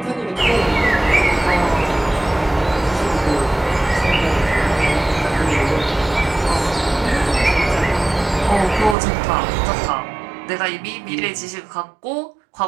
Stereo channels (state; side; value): drops out; left; at 9.0 s